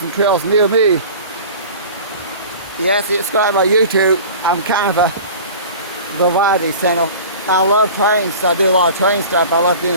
trails near me. You have to subscribe to my YouTube. I'm kind of a variety channel. I love trains, so I do a lot of train stuff. I love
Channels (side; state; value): both; inverted; correlation -0.40